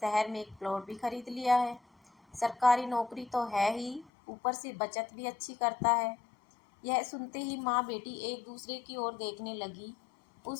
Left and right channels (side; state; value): right; drops out; at 4.1 s